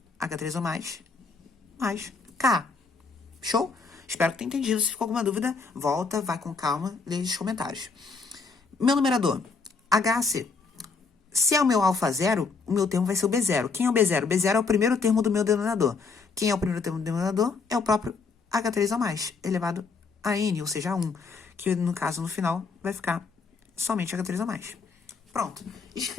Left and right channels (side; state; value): right; quieter; 4.6 dB